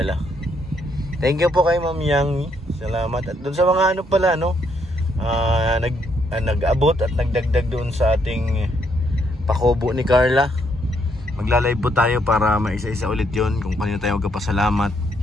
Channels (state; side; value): normal; both; correlation 0.73